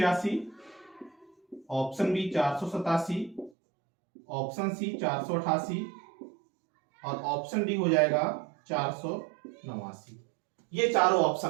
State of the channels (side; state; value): left; drops out; at 3.5 s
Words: ऑप्शन बी 487, ऑप्शन सी 488 और ऑप्शन डी हो जाएगा 489। ये चारों